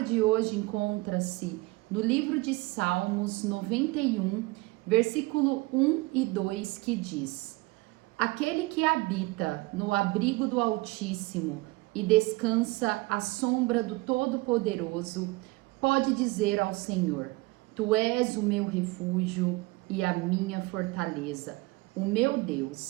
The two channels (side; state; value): left; quieter; 22.6 dB